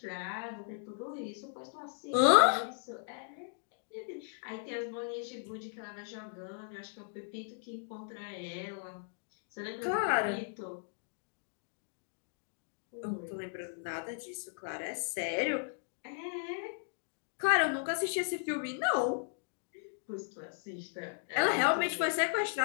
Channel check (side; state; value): right; silent; digital silence